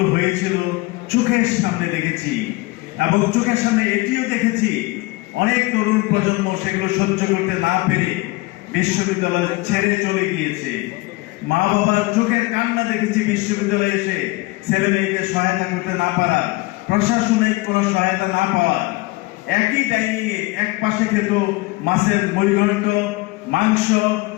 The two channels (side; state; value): right; quieter; 22.1 dB